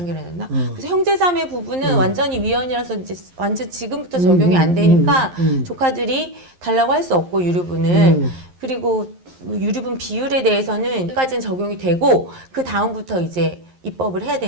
났나? 그래서 형제자매 부분은 완전히 위헌이라서 이제 완전 지금부터 적용이 안 되니까 조카들이 달라고 할 수 없고 유류분을. 그리고 유류분 비율에 대해서는 여기까지는 적용이 되고 그 다음부터 이제 입법을 해야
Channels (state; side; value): late; left; 11 ms